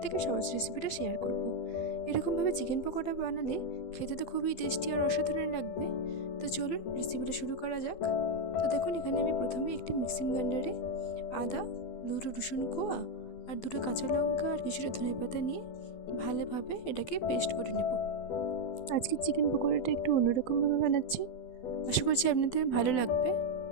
সহজ রেসিপিটা শেয়ার করব। এরকমভাবে চিকেন পকোড়া বানালে খেতে তো খুবই টেস্টি আর অসাধারণ লাগবে। তো চলুন রেসিপিটা শুরু করা যাক। তো দেখুন, এখানে আমি প্রথমে একটি মিক্সিং গ্রাইন্ডারে আদা, দুটো রসুন কোয়া আর দুটো কাঁচা লঙ্কা আর কিছুটা ধনেপাতা নিয়ে ভালোভাবে এটাকে পেস্ট করে নেব। আজকে চিকেন পকোড়াটা একটু অন্যরকমভাবে বানাচ্ছি, আশা করছি আপনাদের ভালো লাগবে।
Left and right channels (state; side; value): late; right; 12 ms